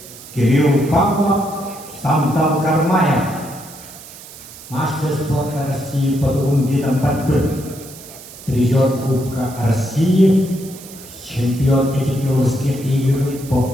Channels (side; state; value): right; noise; hiss, 17 dB below the sound